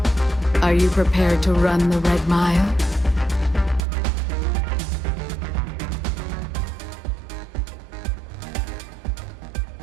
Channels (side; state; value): left; drops out; at 3.8 s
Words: Are you prepared to run the Red Mile?